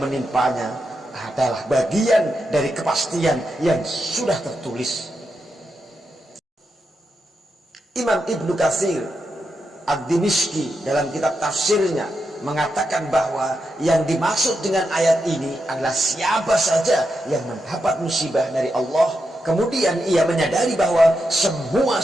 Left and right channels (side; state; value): both; normal; correlation 0.86